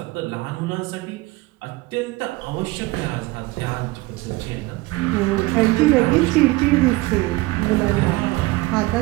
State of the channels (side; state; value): left; quieter; 20.7 dB